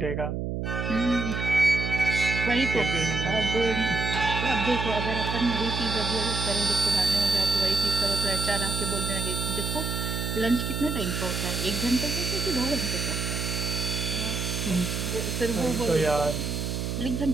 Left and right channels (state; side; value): noise; right; hum, 3 dB below the sound